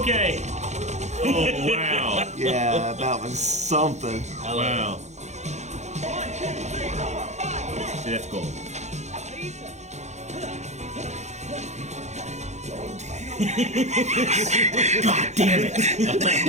okay. Oh, wow. Yeah, that was something. Wow. See, that's cool. God damn it.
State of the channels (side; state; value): left; late; 0.33 ms